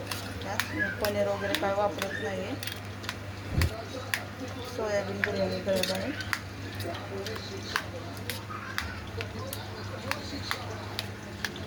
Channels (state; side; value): identical; both; correlation 1.00